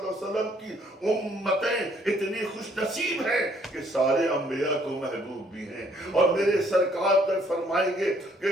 علیہ وسلم کی امتیں اتنی خوش نصیب ہیں کہ سارے انبیاء کو محبوب بھی ہیں، اور میرے سرکار تک فرمائیں گے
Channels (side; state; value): both; normal; correlation 0.65